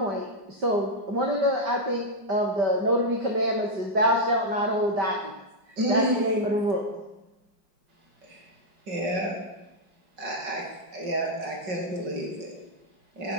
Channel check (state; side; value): late; left; 5.3 ms